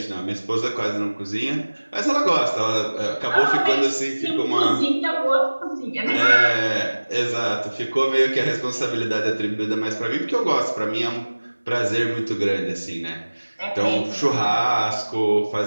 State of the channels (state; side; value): inverted; both; correlation -1.00